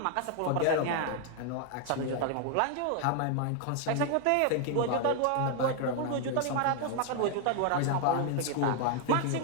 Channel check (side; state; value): both; different; correlation 0.00